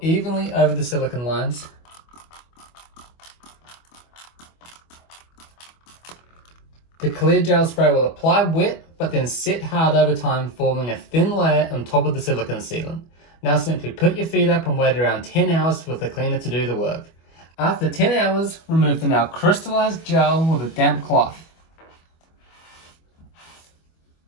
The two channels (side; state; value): right; late; 25 ms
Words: over the silicone lines. The clear gel spray will apply wet, but then set hard over time, forming a thin layer on top of the silicone sealant. Now simply put your feet up and wait around 10 hours for the cleaner to do the work. After 10 hours, remove the now crystallized gel with a damp cloth.